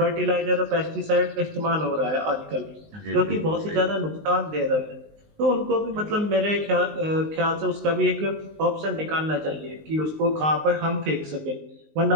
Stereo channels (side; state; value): left; late; 19 ms